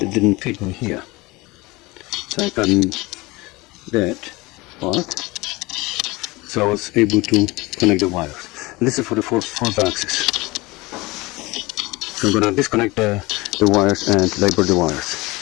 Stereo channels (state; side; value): quieter; right; 22.6 dB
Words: didn't fit in here. So I cut that part, so I was able to connect the wires. And this is for the fourth axis. So I'm gonna disconnect the wires and label the wires.